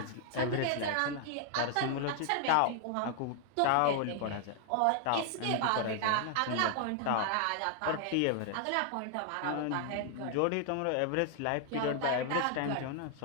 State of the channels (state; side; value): different; both; correlation 0.00